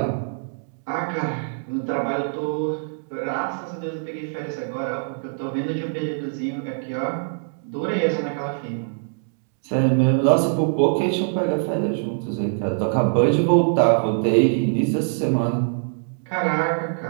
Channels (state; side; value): silent; left; digital silence